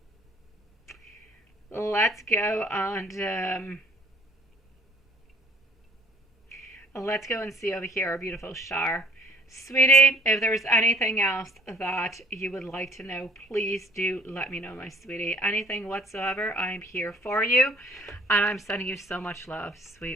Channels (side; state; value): both; normal; correlation 0.56